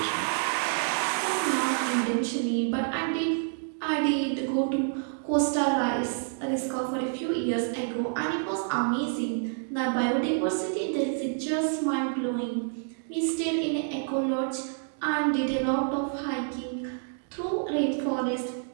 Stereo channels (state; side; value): silent; left; digital silence